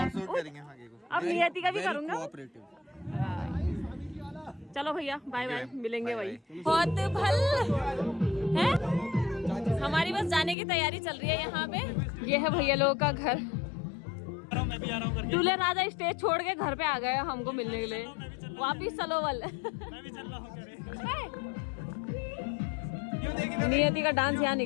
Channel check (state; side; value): drops out; right; at 10.6 s